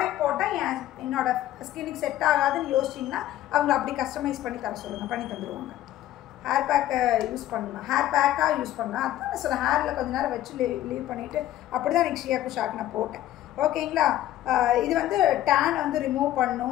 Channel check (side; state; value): right; quieter; 13.5 dB